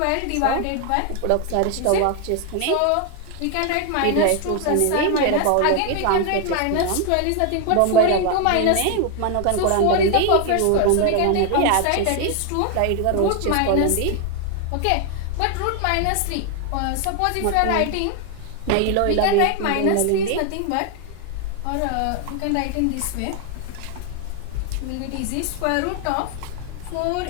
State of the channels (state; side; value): different; both; correlation 0.01